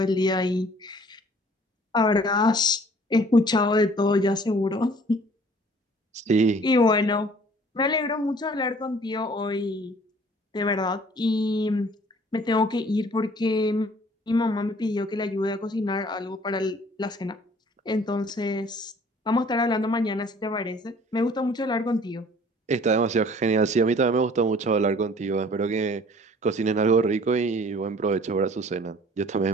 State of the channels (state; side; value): normal; both; correlation 0.53